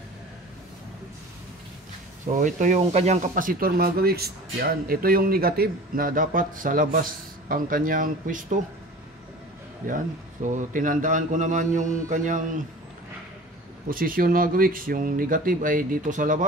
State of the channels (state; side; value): normal; both; correlation 0.40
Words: So ito yung kanyang kapasitor mga gawiks. Yan, ito yung negative na dapat sa labas ang kanyang pwesto. Yan. So tinandaan ko naman yung kanyang posisyon mga gawiks. Yung negative ay dito sa